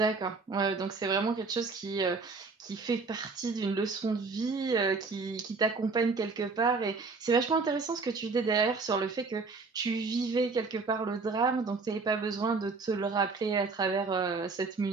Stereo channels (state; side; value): quieter; left; 4.3 dB